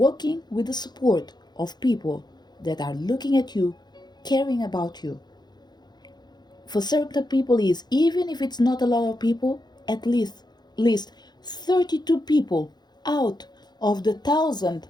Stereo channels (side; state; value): right; late; 0.21 ms